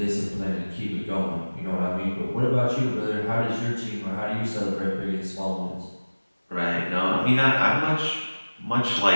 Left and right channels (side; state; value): both; inverted; correlation -1.00